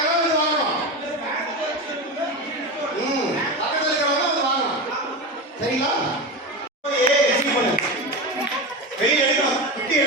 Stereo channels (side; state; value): both; normal; correlation 0.21